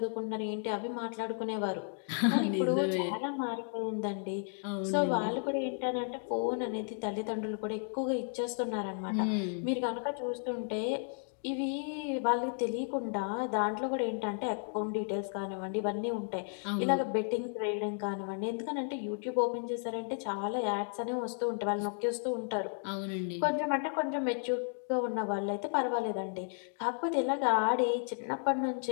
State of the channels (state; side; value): silent; right; 55 dB below the other